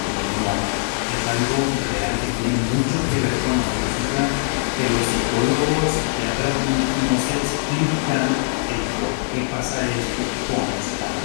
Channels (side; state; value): right; silent; digital silence